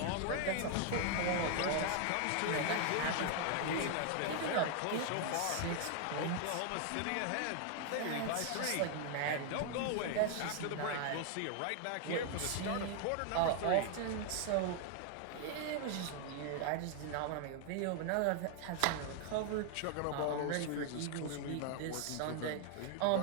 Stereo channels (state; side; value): different; both; correlation 0.00